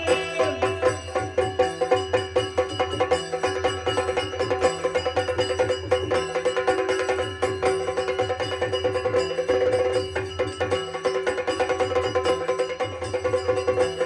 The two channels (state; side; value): identical; both; correlation 1.00